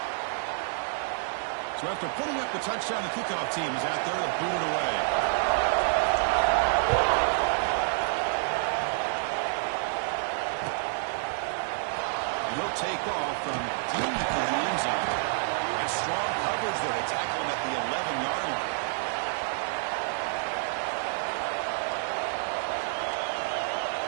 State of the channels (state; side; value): silent; left; digital silence